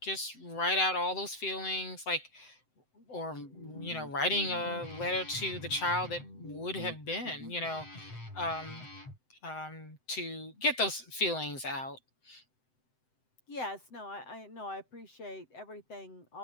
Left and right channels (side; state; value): right; late; 7.8 ms